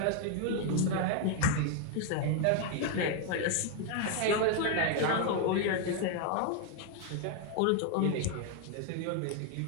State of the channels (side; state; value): both; different; correlation 0.01